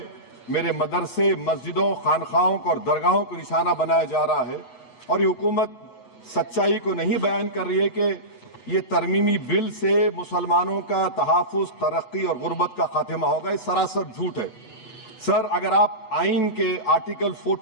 میرے مدرسے، مسجدوں، خانقاہوں اور درگاہوں کو نشانہ بنایا جا رہا ہے۔ اور یہ حکومت سچائی کو نہیں بیان کر رہی ہے کہ یہ ترمیمی بل سے مسلمانوں کا تحفظ، ترقی اور غربت کا خاتمہ ہوگا۔ یہ سراسر جھوٹ ہے۔ سر، اگر آپ آئین کے آرٹیکل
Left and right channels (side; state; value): right; late; 8.2 ms